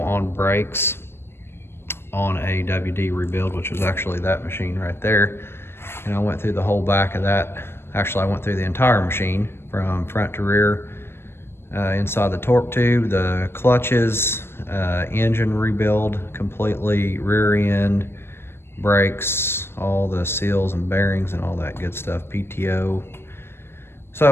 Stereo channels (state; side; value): late; right; 0.12 ms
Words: on brakes on a WD rebuild, which was actually that machine right there. And I went through the whole back of that. Actually, I went through the entire machine from front to rear, inside the torque tube, the clutches, engine rebuild completely, rear end, brakes, all the seals and bearings and all that good stuff, PTO.